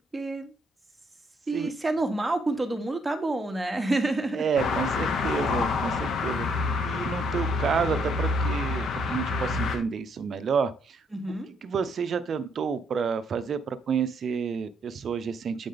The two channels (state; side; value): normal; both; correlation 0.71